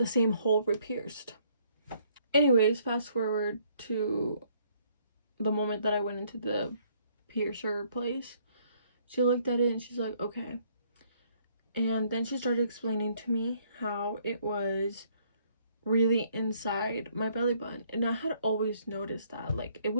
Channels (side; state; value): both; inverted; correlation -0.66